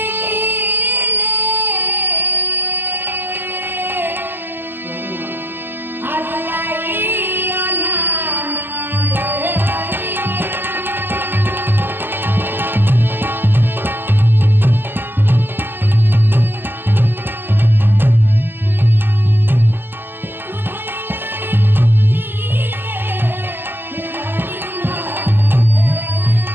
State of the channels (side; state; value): left; late; 0.097 ms